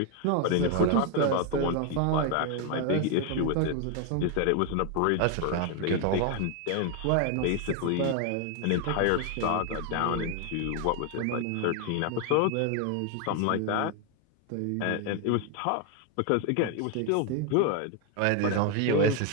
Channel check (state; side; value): different; both; correlation 0.01